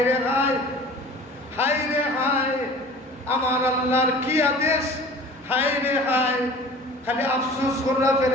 রে হায়, হায় রে হায়, আমার আল্লাহর কি আদেশ, হায় রে হায়, খালি আফসোস করা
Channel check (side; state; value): both; normal; correlation 0.43